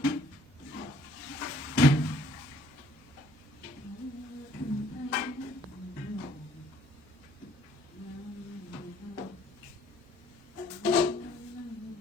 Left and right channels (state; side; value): normal; both; correlation 0.60